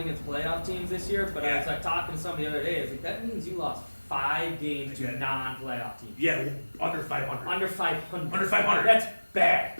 playoff teams this year? But I was Yeah. like talking to somebody the other day. I was like, that means you lost 5 games to Yeah. non-playoff teams. Yeah, under 500. Under 500. Under 500. That's bad.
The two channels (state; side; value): inverted; both; correlation -1.00